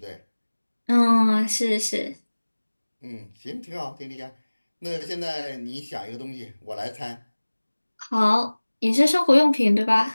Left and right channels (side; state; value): both; inverted; correlation -1.00